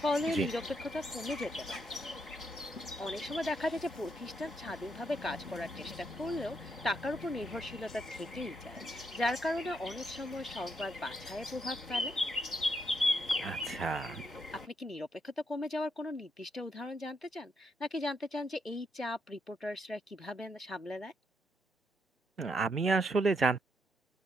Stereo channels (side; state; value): both; normal; correlation 0.78